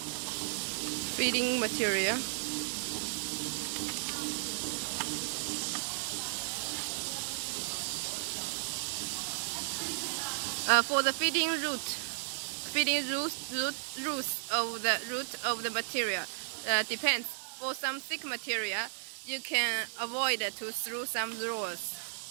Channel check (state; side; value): silent; left; 55 dB below the other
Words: Feeding material. For the feeding roots of the material depends. For some thick material, you can avoid to through some rolls.